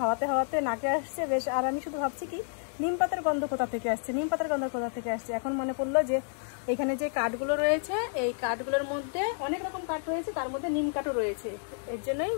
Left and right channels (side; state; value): right; silent; digital silence